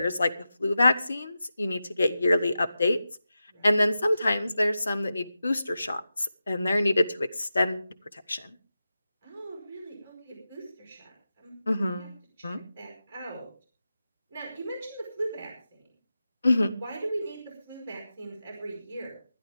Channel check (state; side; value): inverted; both; correlation -0.92